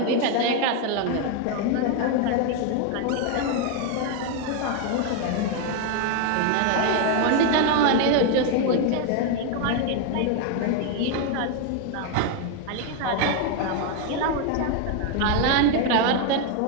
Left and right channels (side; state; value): both; different; correlation 0.01